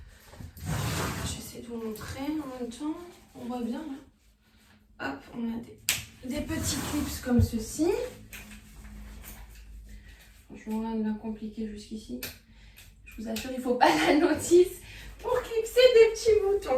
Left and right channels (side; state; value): both; identical; correlation 1.00